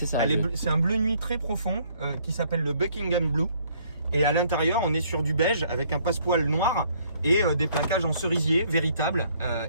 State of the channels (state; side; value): inverted; both; correlation -0.64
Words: ça. C'est un bleu nuit très profond qui s'appelle le Buckingham Blue. Et à l'intérieur, on est sur du beige avec un passepoil noir et des plaquages en cerisier véritables.